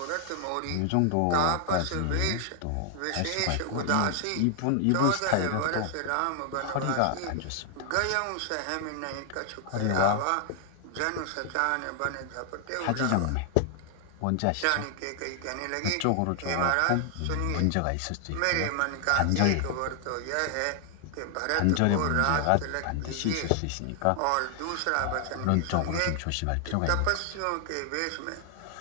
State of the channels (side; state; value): both; different; correlation 0.00